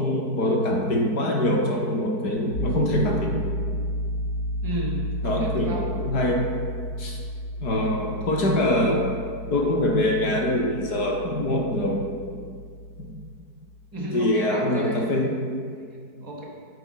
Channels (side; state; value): right; late; 4.6 ms